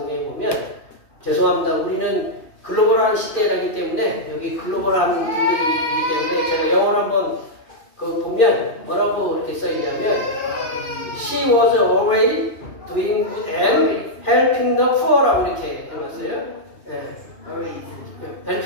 보면 죄송합니다. 우리는 글로벌한 시대이기 때문에 여기 글로벌한 분들이기 때문에 제가 영어로 한번 보면 뭐라고 이렇게 써있냐면 She was always doing good and helping the poor라고 이렇게 해놨어요. 네.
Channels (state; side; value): late; right; 2.4 ms